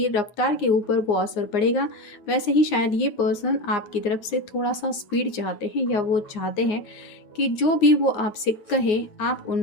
रफ्तार के ऊपर वो असर पड़ेगा। वैसे ही शायद ये पर्सन आपकी तरफ से थोड़ा सा स्पीड चाहते हैं, या वो चाहते हैं कि जो भी वो आपसे कहे आप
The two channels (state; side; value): late; right; 9.1 ms